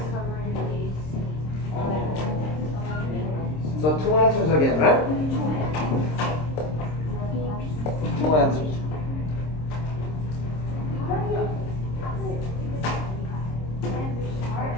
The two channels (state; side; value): late; right; 26 ms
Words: So 2 answers again, right? 2 answers.